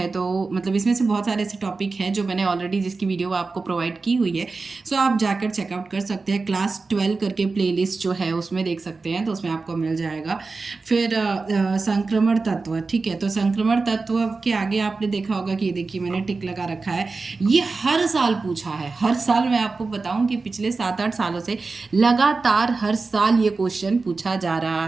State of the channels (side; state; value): left; quieter; 4.0 dB